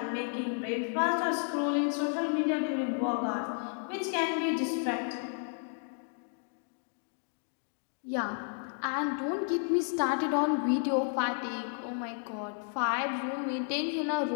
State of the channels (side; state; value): right; silent; 56 dB below the other